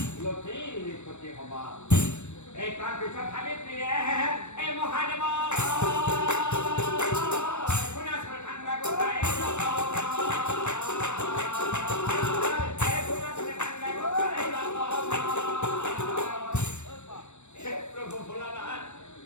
হবা এই তার পিছত সাবিত্ৰীয়ে এই মহাদেৱ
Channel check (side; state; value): right; late; 0.82 ms